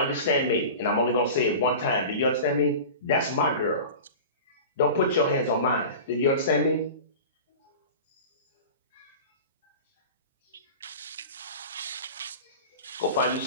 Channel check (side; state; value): both; inverted; correlation -0.34